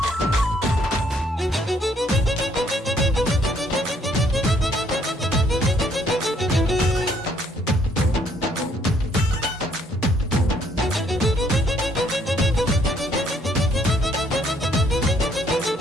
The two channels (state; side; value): normal; both; correlation 0.67